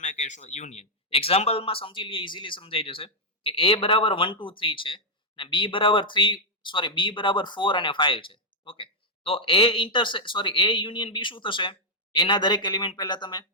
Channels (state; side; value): normal; both; correlation -0.03